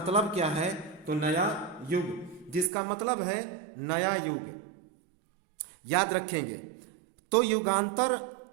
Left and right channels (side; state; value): left; drops out; at 2.7 s